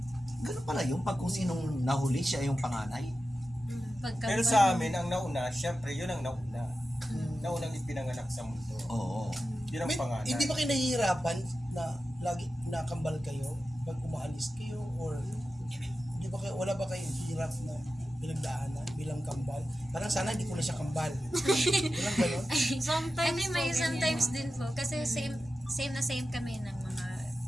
Ganun pala yung pag kung sinong nahuli, siya yung panganay. Pero sa amin, ang nauna, syempre, yun ang nauna. Naunang ipinanganak sa mundo. Oo. Yun ang panganay. Hindi ba kayo nahihirapan na lagi nakambal kayo pag umaalis kayo, or hindi ba kayo, wala ba kayong hirap na pinagdaanan bilang kambal? Parang sana hindi ko na siya kambal. Walang gano'n? Sometimes din po. Kasi same kami ng mga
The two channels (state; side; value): normal; both; correlation 0.93